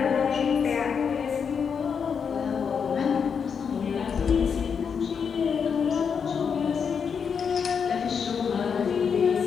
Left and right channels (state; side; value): quieter; right; 6.6 dB